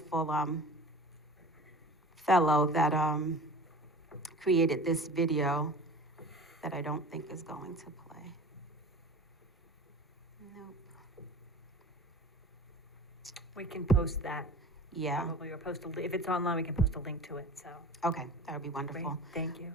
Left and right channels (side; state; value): both; normal; correlation 0.39